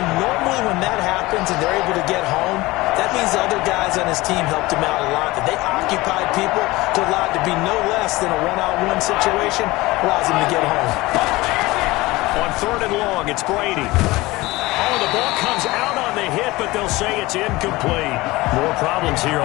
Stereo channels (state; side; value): quieter; right; 20.4 dB